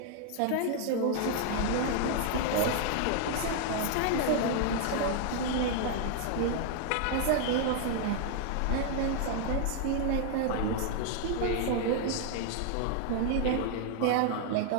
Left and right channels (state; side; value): different; both; correlation 0.00